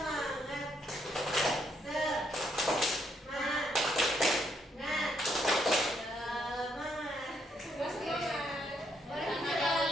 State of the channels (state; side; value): normal; both; correlation 0.74